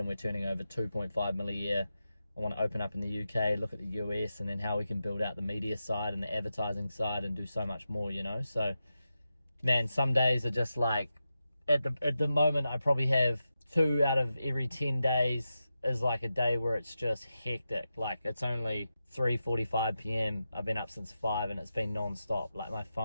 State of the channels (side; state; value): both; inverted; correlation -0.90